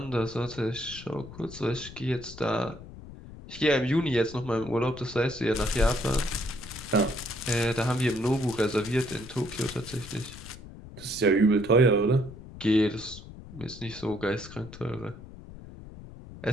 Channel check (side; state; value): left; noise; rumble, 15 dB below the sound